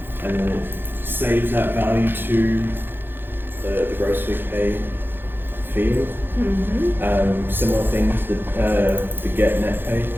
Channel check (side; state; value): left; late; 0.10 ms